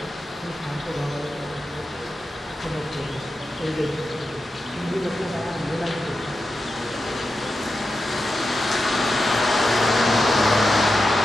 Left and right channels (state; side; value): normal; both; correlation 0.89